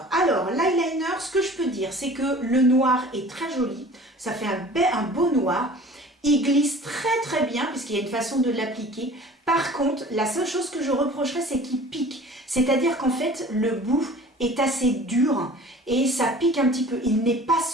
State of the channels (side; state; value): both; normal; correlation 0.45